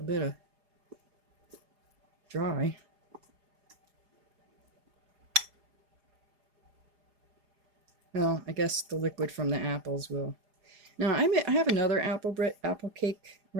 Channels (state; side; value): late; left; 4.9 ms